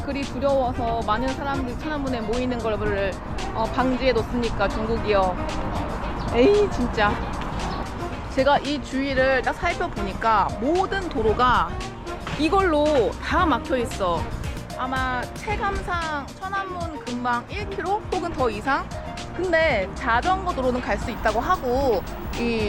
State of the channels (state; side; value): identical; both; correlation 1.00